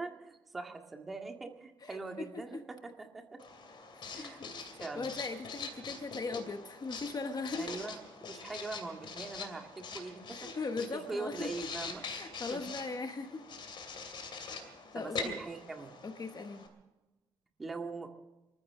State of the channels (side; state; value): both; normal; correlation 0.60